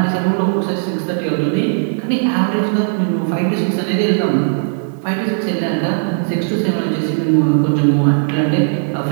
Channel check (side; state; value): left; silent; digital silence